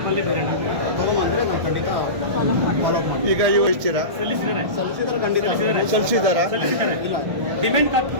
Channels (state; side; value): late; left; 1.2 ms